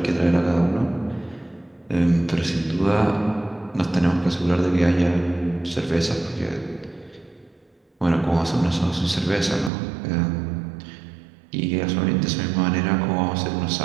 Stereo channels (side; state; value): left; drops out; at 9.7 s